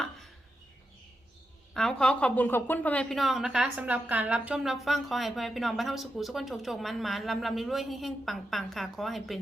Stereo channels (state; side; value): normal; both; correlation 0.87